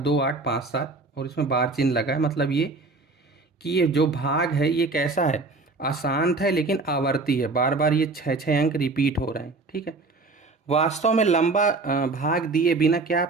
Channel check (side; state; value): left; quieter; 3.6 dB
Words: और इसमें बार चिन्ह लगा है। मतलब ये कि ये जो भाग है ये कैसा है, अशांत है लेकिन आवर्ती है। बार बार ये 6 अंक रिपीट हो रहे हैं। ठीक है, वास्तव में लंबा भाग दिए बिना क्या